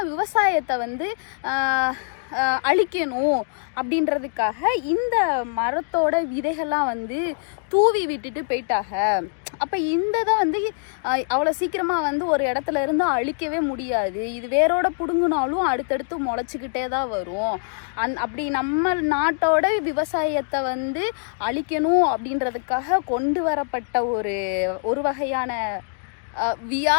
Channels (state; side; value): silent; right; digital silence